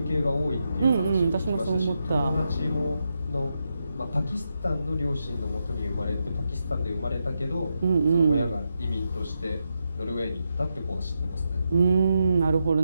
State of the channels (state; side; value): inverted; both; correlation -0.85